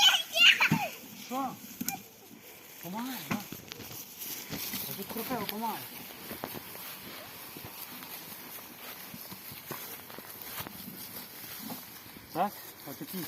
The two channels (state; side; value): identical; both; correlation 1.00